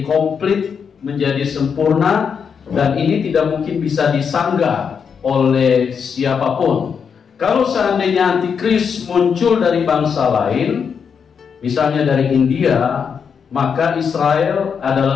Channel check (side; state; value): right; quieter; 6.6 dB